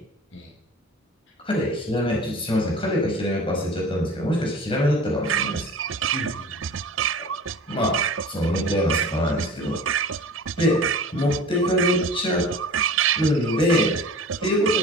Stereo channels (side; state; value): both; normal; correlation 0.40